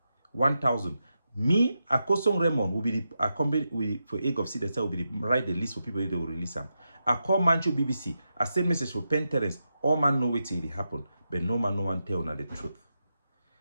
1,000. Me, Akosong Raymond will be the accompany for egg of seed that will be the write the list for people they will release them. I call Manchu BBC. I send message for Pen Terence. All man know what it happen, but no one tell na the truth.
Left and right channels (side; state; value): both; inverted; correlation -0.87